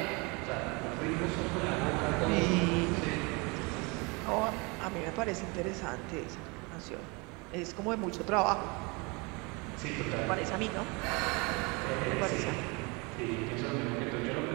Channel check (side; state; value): left; quieter; 28.6 dB